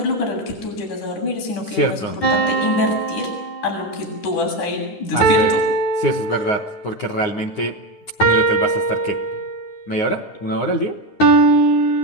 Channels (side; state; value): right; late; 9.6 ms